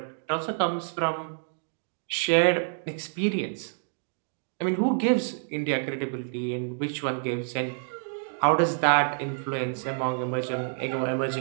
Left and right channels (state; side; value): silent; left; digital silence